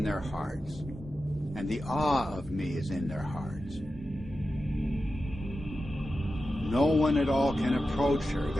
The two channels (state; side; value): normal; both; correlation 0.92